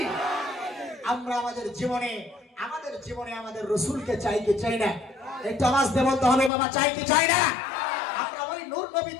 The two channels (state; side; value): drops out; right; at 6.5 s